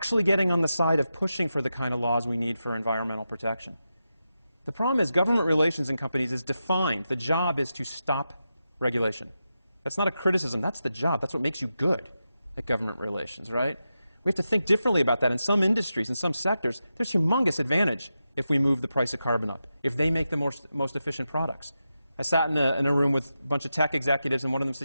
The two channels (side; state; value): both; inverted; correlation -0.89